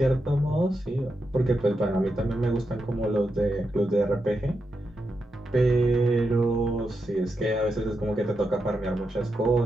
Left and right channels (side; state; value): both; normal; correlation 0.86